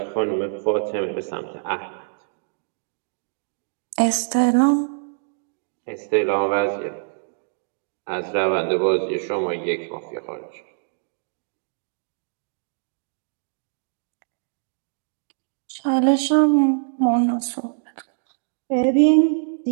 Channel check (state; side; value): silent; left; digital silence